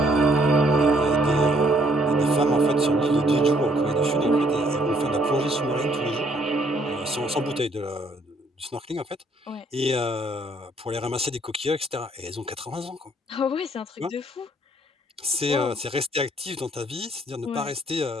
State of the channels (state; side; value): normal; both; correlation 0.66